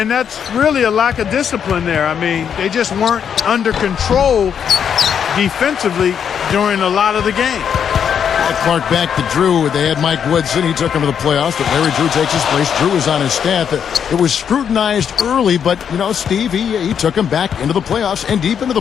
that's really a lack of discipline there. I mean, they just weren't under control defensively during a lot of the game. Clark back to Drew. They had Mike Woodson. He took him to the playoffs, but Larry Drew takes his place. Drew is on his staff. It was scrutinized early, but, you know, Steve, he took him back into the playoffs and deep into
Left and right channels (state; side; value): quieter; right; 7.9 dB